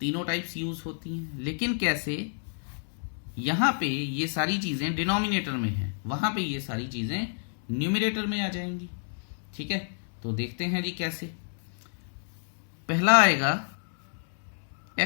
टाइप्स यूज होती हैं। लेकिन कैसे? यहां पे ये सारी चीजें डिनोमिनेटर में है, वहां पे ये सारी चीजें न्यूमरेटर में आ जाएंगी। ठीक है, तो देखते हैं जी कैसे। पहला आएगा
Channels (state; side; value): silent; right; digital silence